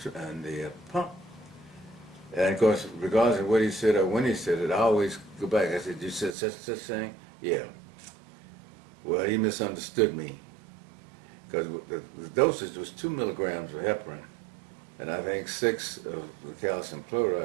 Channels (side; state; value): left; drops out; at 6.4 s